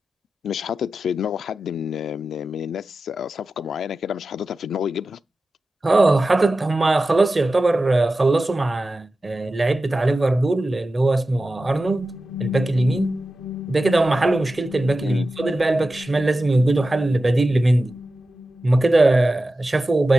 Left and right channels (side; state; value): both; normal; correlation 0.93